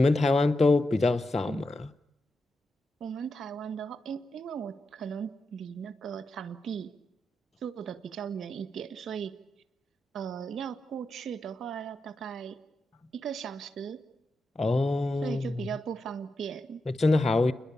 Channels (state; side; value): normal; both; correlation 0.87